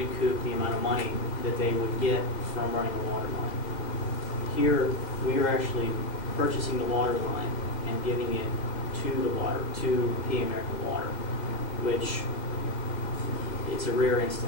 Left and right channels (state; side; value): late; right; 2.0 ms